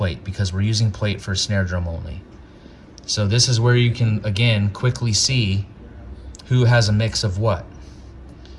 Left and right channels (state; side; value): identical; both; correlation 1.00